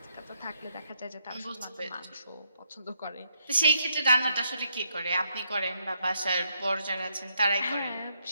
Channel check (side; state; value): both; inverted; correlation -0.76